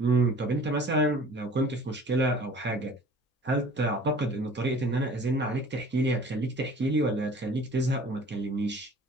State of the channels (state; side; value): normal; both; correlation 0.48